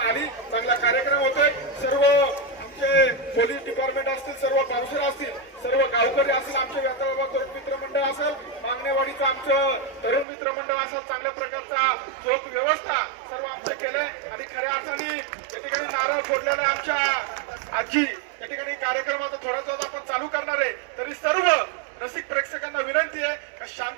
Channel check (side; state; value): left; drops out; at 10.2 s